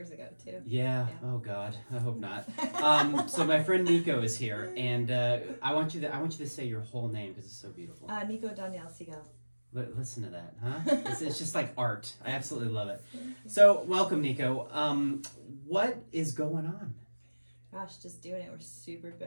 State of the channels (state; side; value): inverted; both; correlation -1.00